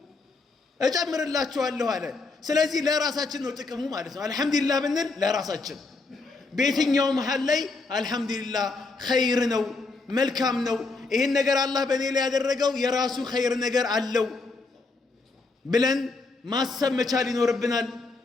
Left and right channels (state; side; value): quieter; right; 3.8 dB